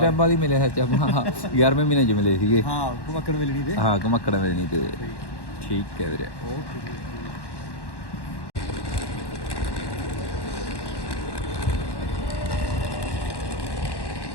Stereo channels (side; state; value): right; late; 1.1 ms